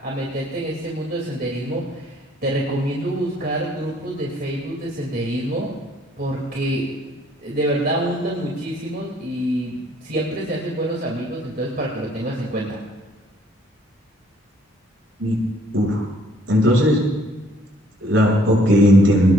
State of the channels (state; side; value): normal; both; correlation 0.62